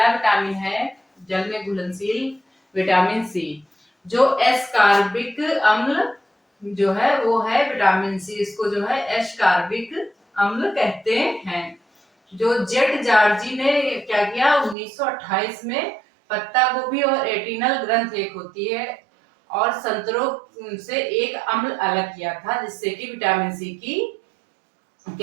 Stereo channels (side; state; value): left; drops out; at 14.8 s